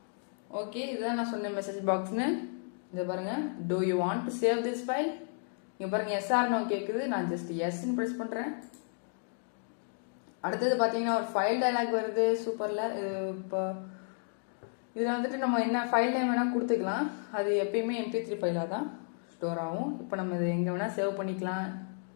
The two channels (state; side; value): silent; right; 56 dB below the other